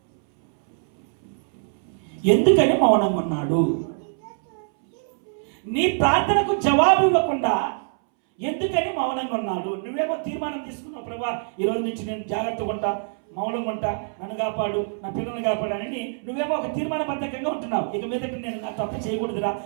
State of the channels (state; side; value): silent; left; 62 dB below the other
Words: ఎందుకని మౌనంగా ఉన్నాడు? నీ ప్రార్థనకు జవాబు ఇవ్వకుండా ఎందుకని మౌనంగా ఉన్నాడు? నువ్వేమో తీర్మానం తీసుకున్నావు, ప్రభా ఈ రోజు నుంచి నేను జాగ్రత్తగా ఉంటా, మౌనంగా ఉంటా, నన్ను కాపాడు, నా పిల్లల్ని కాపాడని నువ్వేమో ఒక తీర్మానబద్ధకంగా ఉంటున్నావు. ఇక మీదట నేను నా తప్పు చేయకూడదురా,